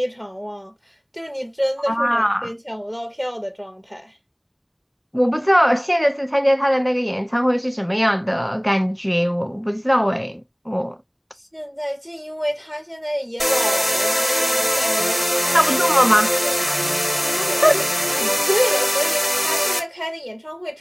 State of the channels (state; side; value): identical; both; correlation 1.00